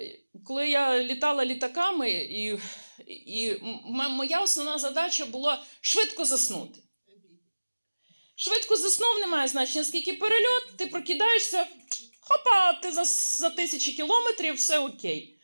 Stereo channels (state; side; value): inverted; both; correlation -1.00